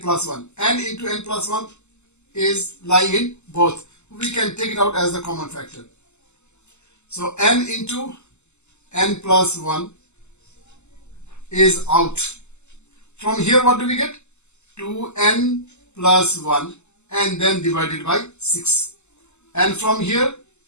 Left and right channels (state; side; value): late; right; 0.83 ms